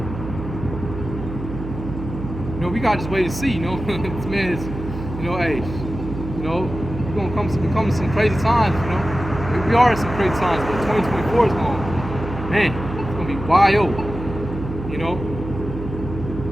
we gotta just wait and see. This man is, hey, we're gonna come to some crazy times. We are in some crazy times, but 2024 is going, man, it's gonna be wild.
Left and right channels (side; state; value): right; noise; hum, 8 dB below the sound